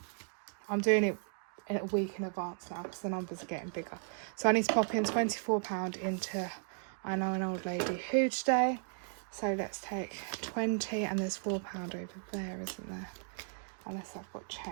I'm doing it in a week in advance now because the numbers are getting bigger. So I need to pop in £24 into I know an old lady who today. So let's take 20 and there's £4 over there, isn't there? Unless I've got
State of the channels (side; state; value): left; silent; 54 dB below the other